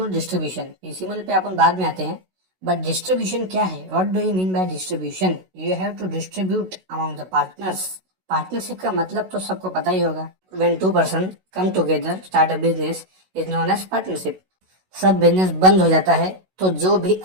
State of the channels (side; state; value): left; late; 16 ms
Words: डिस्ट्रीब्यूशन। पीसीमल पे अपन बाद में आते हैं, बट डिस्ट्रीब्यूशन क्या है? What do you mean by distribution? You have to distribute among the partners. Partnership का मतलब तो सबको पता ही होगा। When two person come together start a business is known as partnership। सब बिजनेस बंद हो जाता है तो जो भी